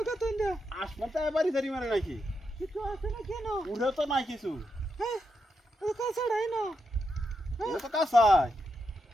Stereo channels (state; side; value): normal; both; correlation 0.84